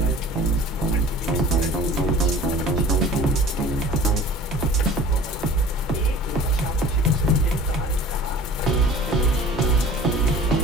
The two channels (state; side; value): normal; both; correlation 0.44